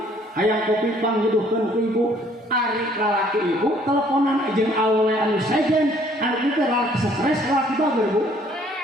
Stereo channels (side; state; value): both; normal; correlation 0.60